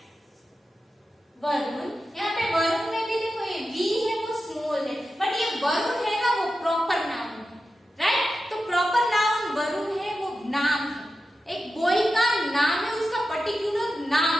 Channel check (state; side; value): normal; both; correlation 0.91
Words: वरुण. यहाँ पे वरुण में भी देखो ये V है वो स्मॉल है, बट ये वरुण है ना वो प्रॉपर नाउन है, राइट? तो प्रॉपर नाउन वरुण है वो नाम है, एक बॉय का नाम है, उसका पर्टिकुलर नाम